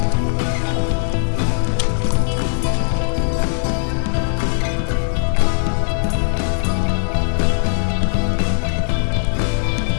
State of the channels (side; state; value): right; silent; digital silence